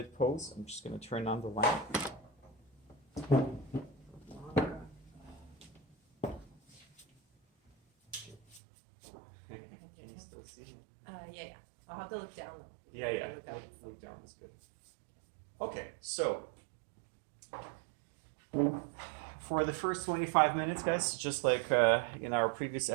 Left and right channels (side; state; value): left; drops out; at 8.6 s